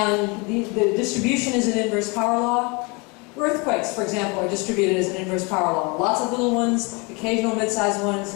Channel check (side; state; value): right; quieter; 29.2 dB